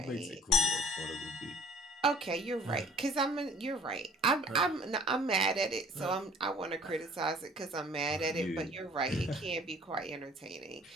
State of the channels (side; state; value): both; normal; correlation 0.52